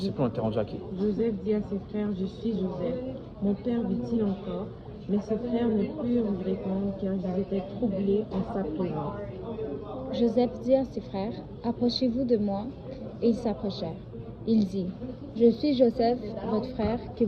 plus, on était rendu à qui. Joseph dit à ses frères, je suis Joseph. Mon père vit-il encore? Mais ses frères ne purent lui répondre car ils étaient troublés en sa présence. Joseph dit à ses frères, approchez-vous de moi. Et ils s'approchèrent. Il dit, je suis Joseph, votre frère, que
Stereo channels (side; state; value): both; identical; correlation 1.00